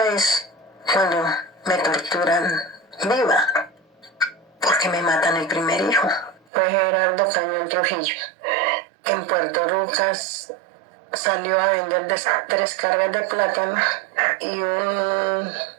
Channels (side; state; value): left; drops out; at 6.5 s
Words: es cuando me torturan viva, porque me matan el primer hijo. Fue Gerardo Cañón Trujillo. En Puerto Rucas salió a vender 3 cargas de plátano y un